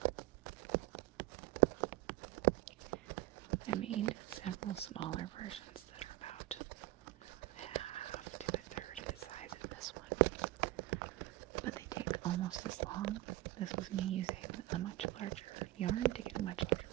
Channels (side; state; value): left; quieter; 17.5 dB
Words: I made several smaller versions that are about half to a third of the size of this one, but they take almost as long. This was me using a much larger yarn to get a much larger